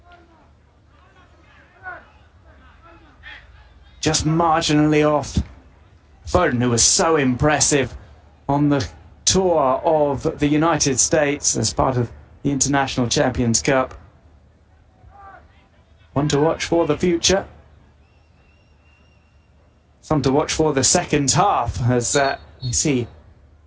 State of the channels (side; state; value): both; identical; correlation 1.00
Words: Just marginally off. Foden, who was so impressive on the tour of the United States as part of the International Champions Cup. One to watch for the future. Some to watch for the second half as we see